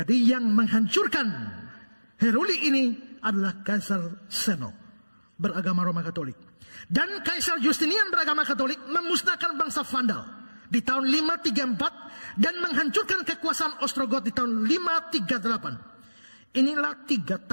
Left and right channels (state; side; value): inverted; both; correlation -1.00